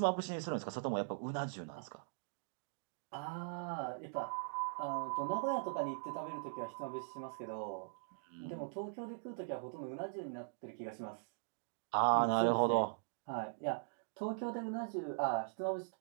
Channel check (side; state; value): left; silent; digital silence